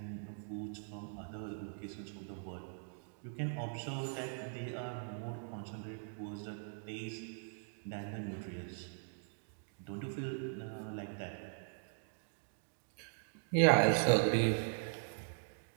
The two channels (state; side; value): silent; left; digital silence